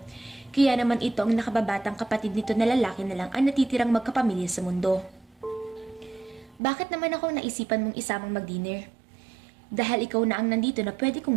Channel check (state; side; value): drops out; left; at 6.6 s